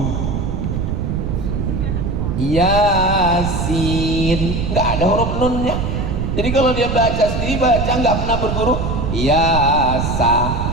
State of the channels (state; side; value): noise; right; rumble, 1 dB below the sound